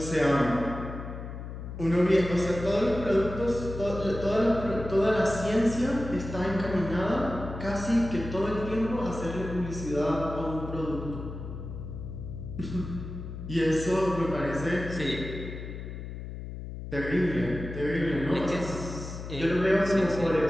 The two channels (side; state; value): left; noise; hum, 9 dB below the sound